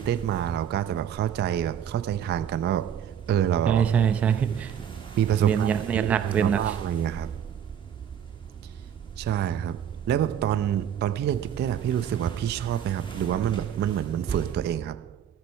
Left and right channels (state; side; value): quieter; left; 9.2 dB